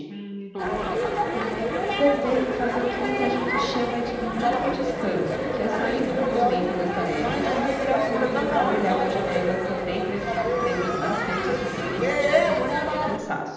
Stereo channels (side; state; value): both; identical; correlation 1.00